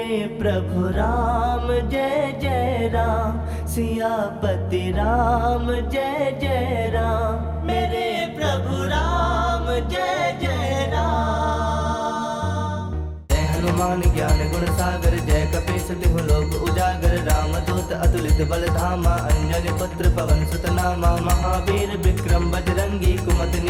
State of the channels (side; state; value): both; identical; correlation 1.00